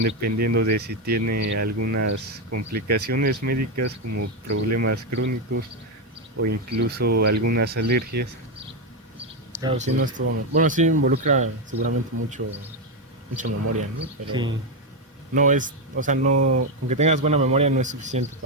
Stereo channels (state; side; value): normal; both; correlation 0.07